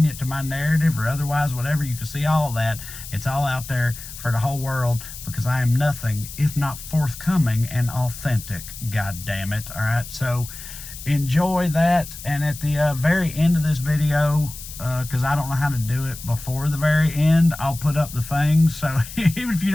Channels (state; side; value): noise; left; hiss, 13 dB below the sound